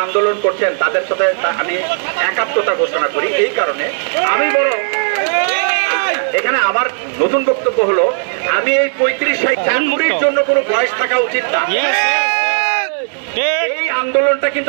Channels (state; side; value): silent; left; 66 dB below the other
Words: আন্দোলন করছেন, তাদের সাথে আমি একাত্মতা ঘোষণা করি। এই কারণে আমি বড় এখানে আমার নতুন বক্তব্য হলো, আমি এই 35 চাকুরির জন্য কোনো বয়স থাকা উচিত না। এই আন্দোলনটা